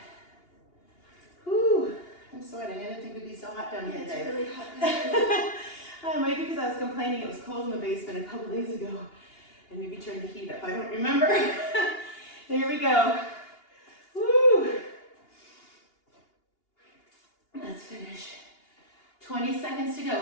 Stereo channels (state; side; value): late; right; 2.8 ms